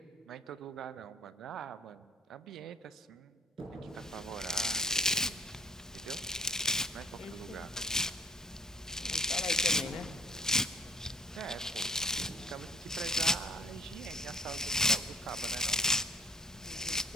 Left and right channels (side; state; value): both; normal; correlation 0.50